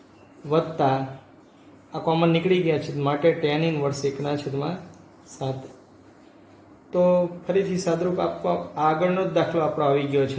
વત્તા આ કોમન નીકળી ગયા છે માટે tan ઇન્વર્સ 1/7. તો ફરીથી સાદરૂપ આપવા આગળનો જ દાખલો આપણો આવી ગયો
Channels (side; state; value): both; identical; correlation 1.00